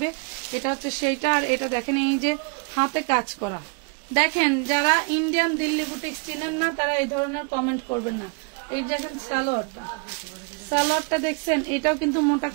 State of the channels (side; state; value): left; quieter; 34.5 dB